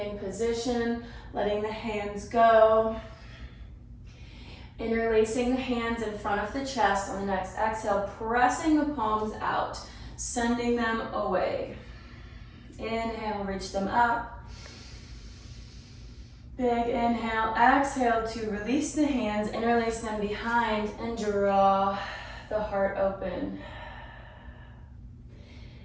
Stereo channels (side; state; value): both; identical; correlation 1.00